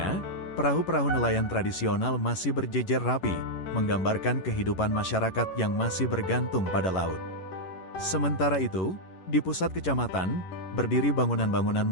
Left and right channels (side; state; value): right; late; 11 ms